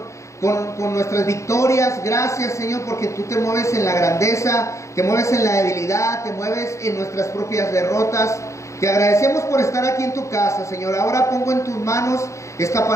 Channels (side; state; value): right; late; 0.15 ms